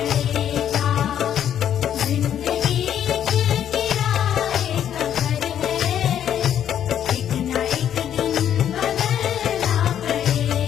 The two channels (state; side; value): quieter; right; 9.9 dB